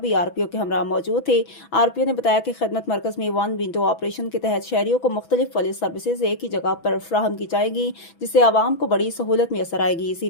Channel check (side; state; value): right; late; 6.1 ms